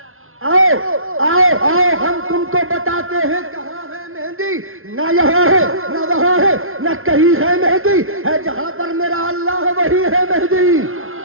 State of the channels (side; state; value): left; late; 0.61 ms